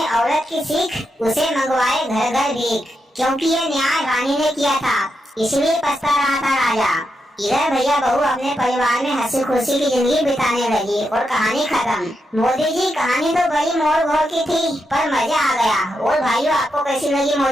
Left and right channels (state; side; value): normal; both; correlation 0.84